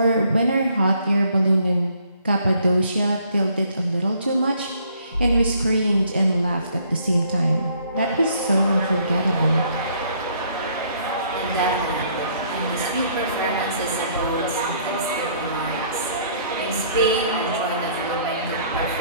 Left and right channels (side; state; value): both; inverted; correlation -0.63